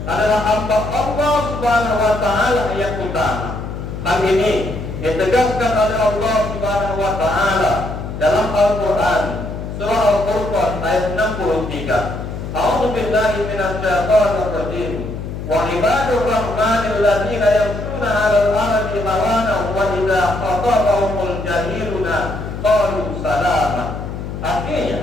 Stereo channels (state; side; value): noise; left; hum, 7 dB below the sound